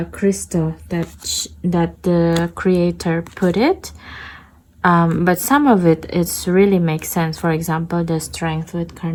crystal that the creator put it. But some of it really makes sense. For example, the strength with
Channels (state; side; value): identical; both; correlation 1.00